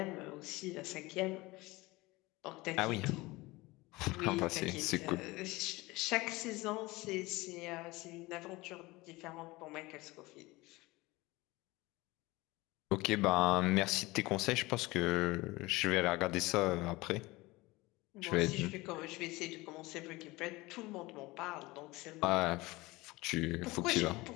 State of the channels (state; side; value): quieter; right; 21.4 dB